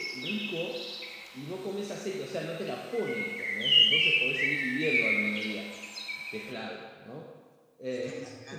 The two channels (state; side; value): identical; both; correlation 1.00